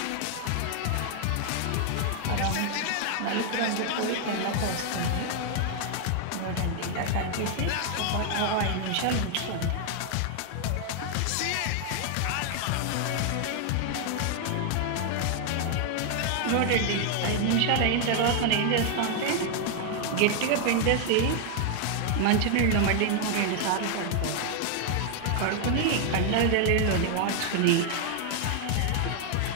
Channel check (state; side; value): different; both; correlation 0.00